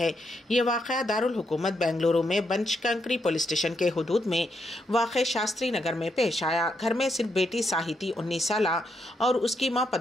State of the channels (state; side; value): normal; both; correlation 0.79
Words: ये वाक़या दारुल हुकूमत बेंगलुरु में बनशंकरी पुलिस स्टेशन के हुदूद में वाक़े शास्त्री नगर में पेश आया। घर में सिर्फ बेटी साहिती 19 साल और उसकी माँ